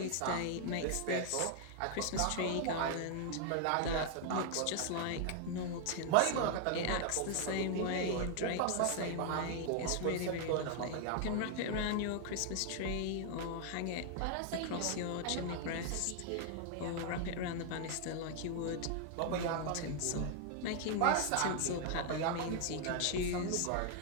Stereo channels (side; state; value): both; different; correlation 0.00